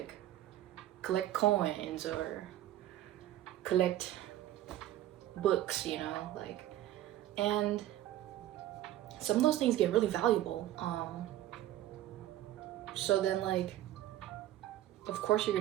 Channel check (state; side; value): quieter; left; 13.5 dB